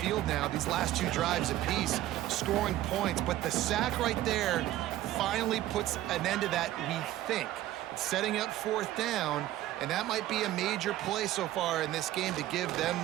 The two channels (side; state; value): left; quieter; 14.4 dB